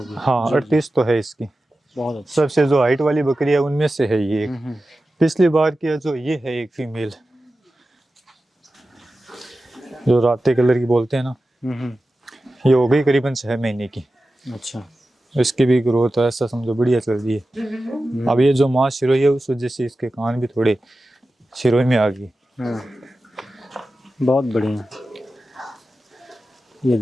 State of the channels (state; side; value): normal; both; correlation 0.94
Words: हाँ 38 तो है इसकी। बहुत अच्छा। सबसे जो हाइट वाली बकरी है उनमें से है ये। पिछली बार की जो ये है एक फीमेल, जो राते कलर की बोलते हैं ना, ये हो गई करीबन 6 महीने की। अच्छा। इसकी भी ग्रोथ ऐसा समझो बढ़िया चल रही है। अब ये जो माँ सिरोही है उस वजह से इसके कान भी थोड़े सिरोही में आ गई। बहुत बढ़िया। ये